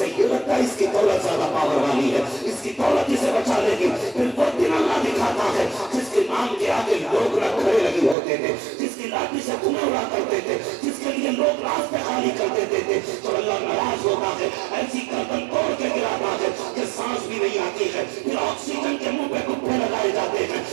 یہ لگتا ہے اس کی دولت زیادہ پاور والی ہے، اس کی دولت اسے بچا لے گی، پھر وہ دن اللہ دکھاتا ہے جس کے نام کے آگے لوگ نہ کھڑے لگے ہوتے تھے، جس کی لاٹھی سے دھوئیں اڑا کرتے تھے، جس کے لیے لوگ راستے خالی کر دیتے تھے، جب اللہ ناراض ہوتا ہے ایسی گردن توڑ کے گراتا ہے کہ سانس بھی نہیں آتی ہے، پھر آکسیجن کے منہ پہ گھٹنے لگائے جاتے ہیں،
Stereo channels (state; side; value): drops out; left; at 8.2 s